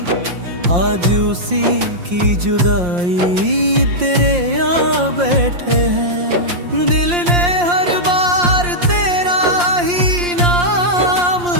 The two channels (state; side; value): late; left; 5.7 ms